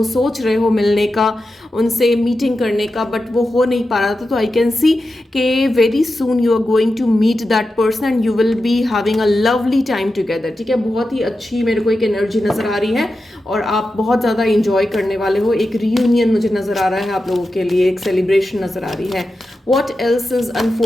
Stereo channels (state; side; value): normal; both; correlation 0.91